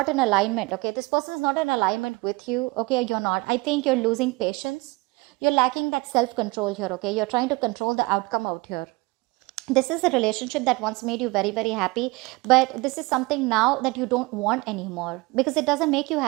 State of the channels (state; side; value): quieter; left; 23.8 dB